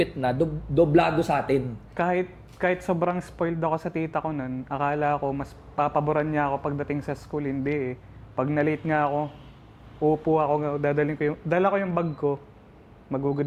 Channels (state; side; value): identical; both; correlation 1.00